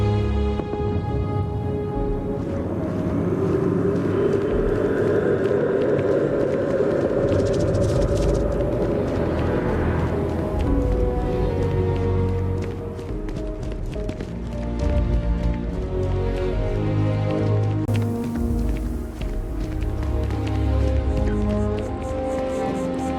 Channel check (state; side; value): identical; both; correlation 1.00